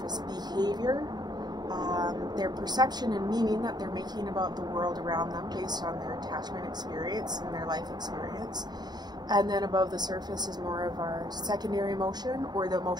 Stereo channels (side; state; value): left; late; 0.20 ms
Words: behavior, their perception and meaning that they're making about the world around them based on their attachment experience and their life experience. And then above the surface is more of our secondary emotion, or the